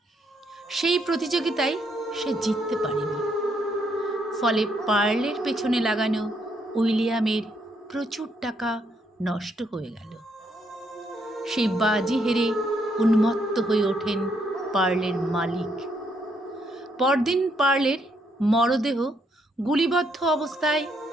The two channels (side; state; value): both; normal; correlation 0.74